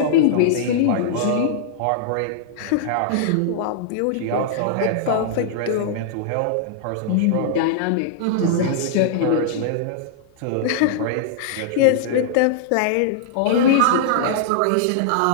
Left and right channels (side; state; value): both; different; correlation -0.01